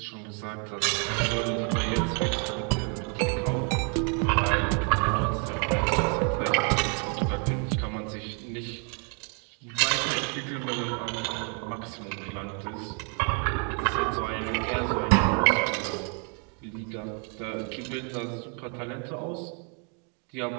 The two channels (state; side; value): quieter; left; 38.3 dB